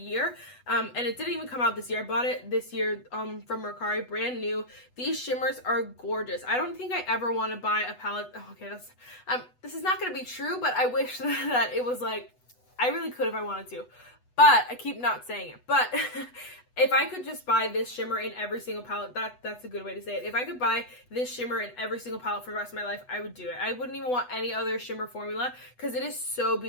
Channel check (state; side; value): late; right; 8.1 ms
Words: And it didn't even come out this year. I bought it this year from Mercari, brand new. These shimmers are gorgeous. I don't think I ever want to buy a palette. Oh, okay, this is not going to be true, but I wish that it was like, I really could if I wanted to. But I keep not saying it. But if I could just buy this shimmer in every single palette, that's a good way to say it. If I could buy this shimmer in every single palette for the rest of my life, I would do it. I wouldn't even want any other shimmer formula because it is so